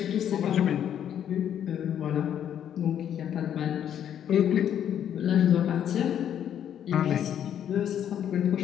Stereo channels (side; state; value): right; quieter; 9.7 dB